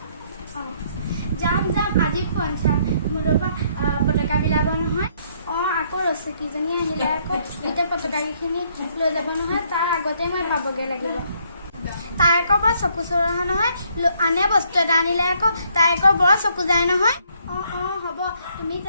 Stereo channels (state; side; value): inverted; both; correlation -0.68